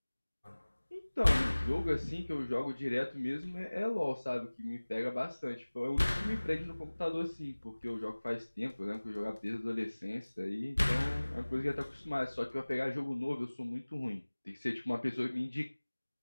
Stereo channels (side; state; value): both; inverted; correlation -1.00